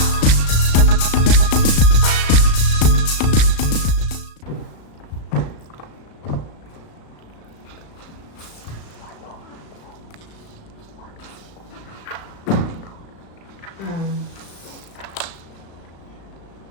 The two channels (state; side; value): late; right; 36 ms